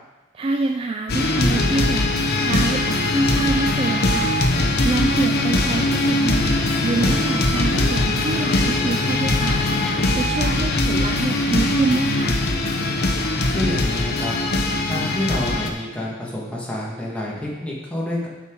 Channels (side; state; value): both; normal; correlation 0.59